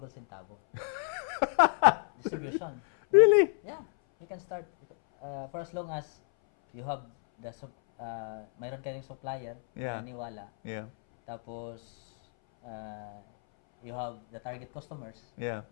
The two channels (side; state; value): right; silent; 57 dB below the other